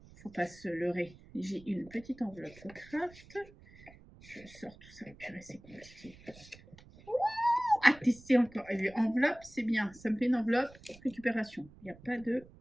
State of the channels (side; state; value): right; noise; rumble, 22 dB below the sound